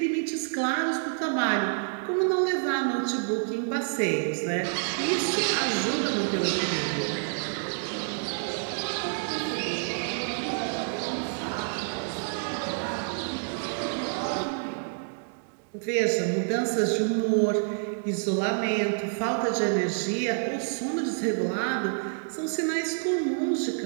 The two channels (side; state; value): left; silent; digital silence